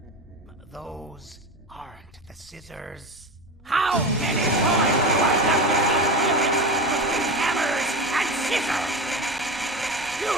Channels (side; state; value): both; normal; correlation 0.26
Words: Those aren't the scissors. How many times do I have to keep flipping between hammers and scissors? You